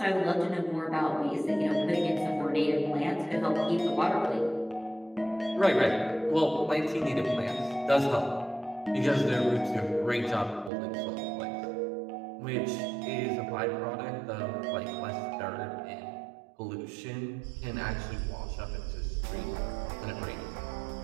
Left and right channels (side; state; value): left; drops out; at 10.7 s